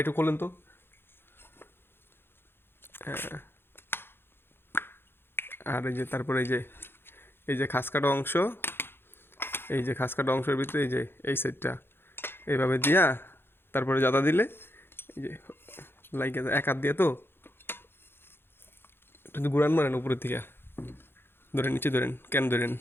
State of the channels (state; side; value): late; right; 0.11 ms